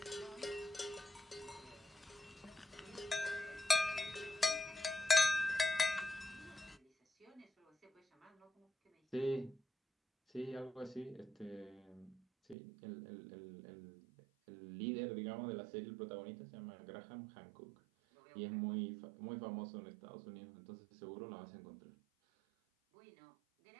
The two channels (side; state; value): left; drops out; at 12.6 s